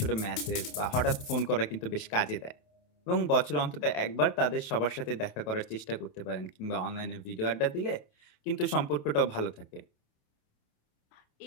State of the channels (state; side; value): late; right; 28 ms